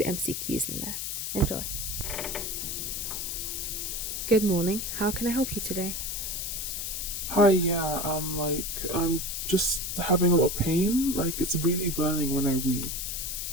in there. Enjoy. Good morning. How can I help you today? Hi, yeah, I'm just having a lot of pain. Like, it's really burning when I wee.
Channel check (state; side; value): noise; left; hiss, 3 dB below the sound